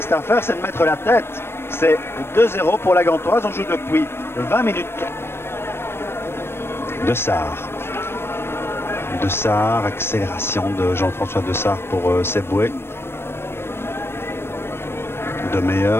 à faire, c'est de mettre la tête. C'est 2-0 pour la Gantoise. On joue depuis 20 minutes. Dessart. Dessart, accélération de Jean-François Dessart pour Seboué. De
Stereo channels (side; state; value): right; late; 0.12 ms